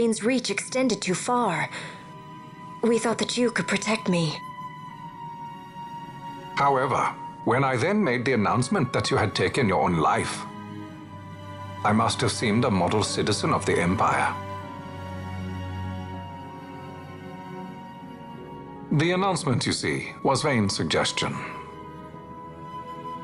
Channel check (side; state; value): both; identical; correlation 1.00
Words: reach extended too far. We thought that you could protect me. However, when I then made the announcement that you had taken your own life, I must have seemed a model citizen of the Empire. The announcement, you see, was Vane's suggestion.